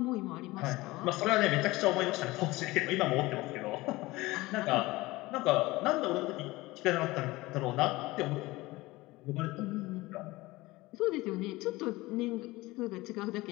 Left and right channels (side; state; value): right; quieter; 20.3 dB